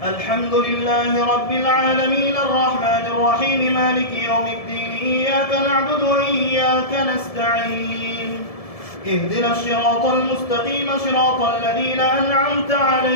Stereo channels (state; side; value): late; right; 1.7 ms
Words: الحمد لله رب العالمين الرحمن الرحيم مالك يوم الدين إياك نعبد وإياك نستعين اهدنا الصراط المستقيم صراط الذين أنعمت